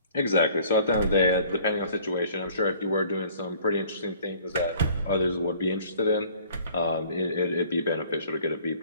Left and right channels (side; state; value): both; inverted; correlation -0.54